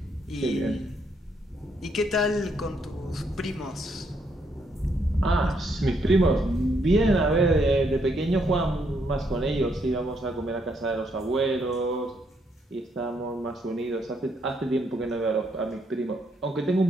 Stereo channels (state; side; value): normal; both; correlation 0.74